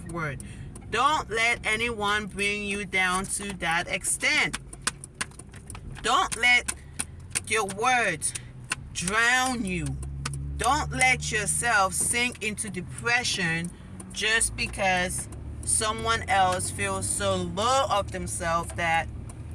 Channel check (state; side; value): identical; both; correlation 1.00